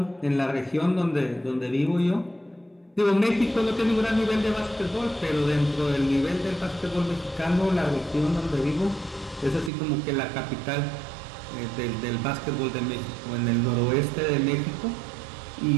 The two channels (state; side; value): drops out; left; at 9.7 s